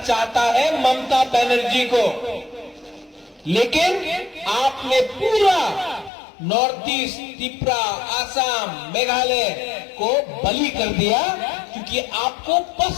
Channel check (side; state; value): right; drops out; at 6.1 s